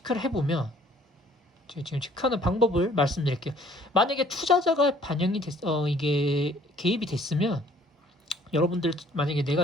해보면, 지금 체크하는 방법을 말씀드릴게요. 만약에 투자자가 이게 개입이 됐으면, 여러분들 만약에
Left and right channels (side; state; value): both; normal; correlation 0.58